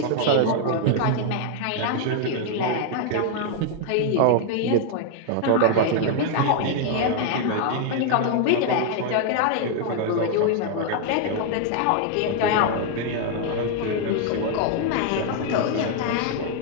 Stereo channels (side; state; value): both; different; correlation 0.00